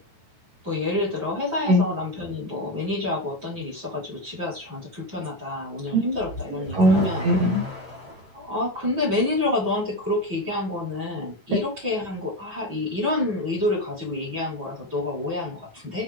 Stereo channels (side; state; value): left; late; 9.1 ms